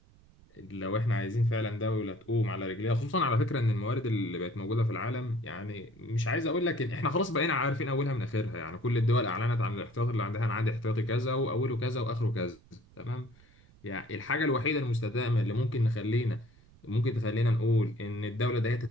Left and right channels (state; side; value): noise; right; rumble, 27 dB below the sound